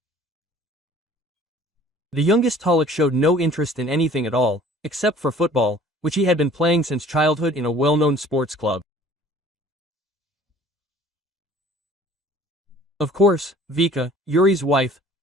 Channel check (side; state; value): both; normal; correlation 0.51